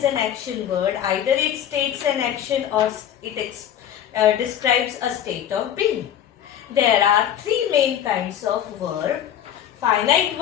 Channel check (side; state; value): right; quieter; 10.2 dB